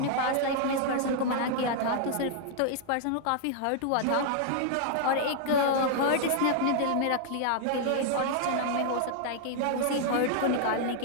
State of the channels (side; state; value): both; different; correlation -0.01